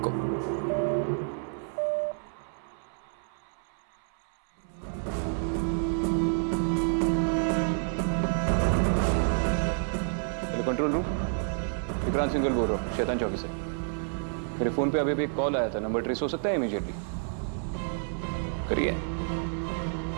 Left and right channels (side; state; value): left; silent; 58 dB below the other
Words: Hello control room, Vikrant Singhal बोल रहा हूँ, शैतान चौकी से। मेरे फोन पे अभी भी एक कॉल आया था, नंबर ट्रेस हो सकता है इमीडिएटली? करिए।